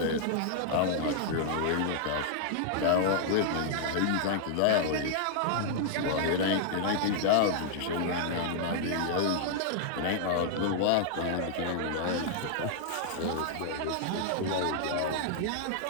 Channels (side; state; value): both; different; correlation -0.01